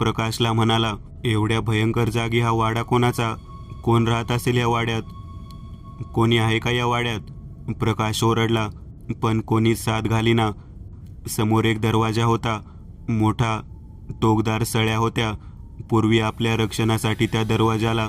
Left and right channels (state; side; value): identical; both; correlation 1.00